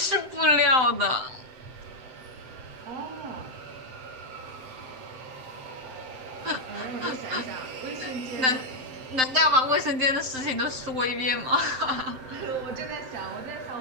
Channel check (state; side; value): late; left; 7.7 ms